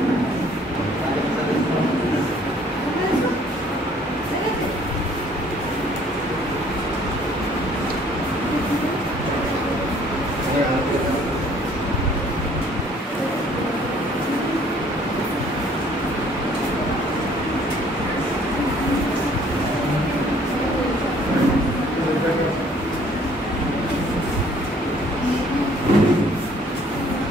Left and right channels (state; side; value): normal; both; correlation 0.58